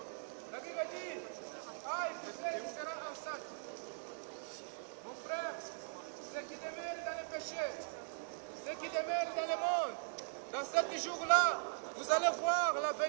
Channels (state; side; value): silent; left; digital silence